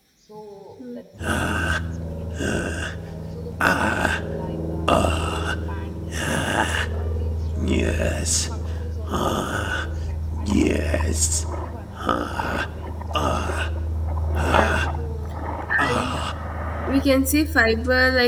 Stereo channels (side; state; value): both; identical; correlation 1.00